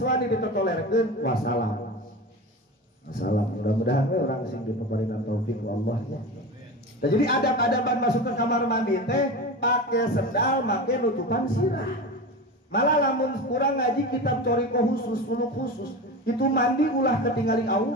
wani ditotolerkeun, wassalam. Mudah-mudahan we urang sing dipaparingan taufik ku Allah ya. Nah, jadi adab-adaban masuk ke kamar mandi teh pakai sendal, make nutupan sirah. Malah lamun kurang ngaji kitab coriko khusus, suluk khusus, itu mandi ulah ketinggali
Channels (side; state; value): both; normal; correlation 0.27